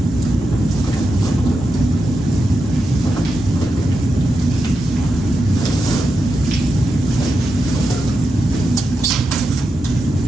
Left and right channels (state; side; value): normal; both; correlation 0.88